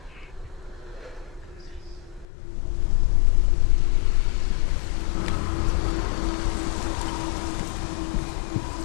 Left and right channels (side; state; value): right; drops out; at 2.2 s